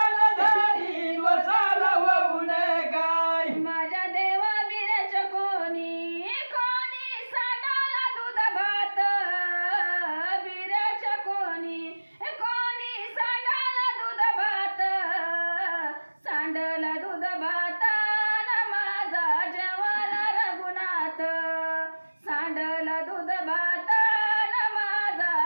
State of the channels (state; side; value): inverted; both; correlation -1.00